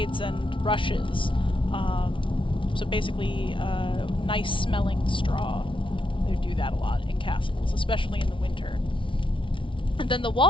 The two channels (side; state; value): right; late; 0.25 ms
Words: and rushes. So basically, nice-smelling straw. They do that a lot in castles, especially in the winter. And then the